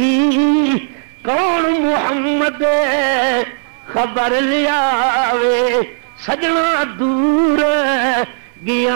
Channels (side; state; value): left; silent; 63 dB below the other